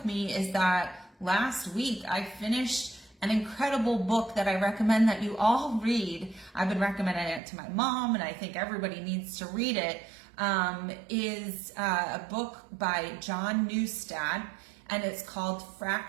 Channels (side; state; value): left; drops out; at 7.4 s